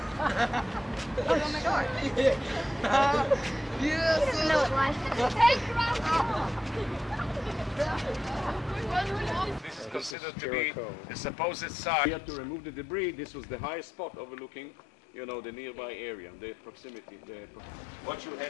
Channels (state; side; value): drops out; right; at 10.2 s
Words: Oh my God. Yes. He doesn't know what life is. This is considered to be the supposed site. We had to remove the debris. This was the highest spot overlooking, you know, the nearby area, the proximity. Watch your